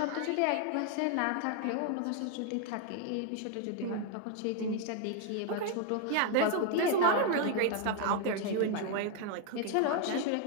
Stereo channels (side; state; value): both; different; correlation 0.00